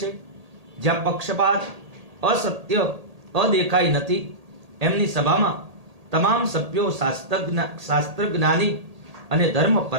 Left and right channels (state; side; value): late; left; 1.8 ms